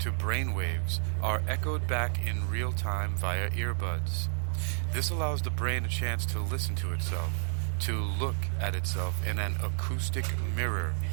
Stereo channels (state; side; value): silent; left; 57 dB below the other